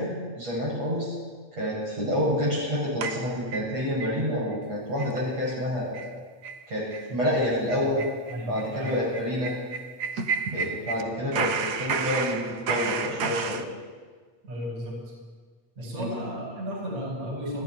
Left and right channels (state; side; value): late; left; 8.9 ms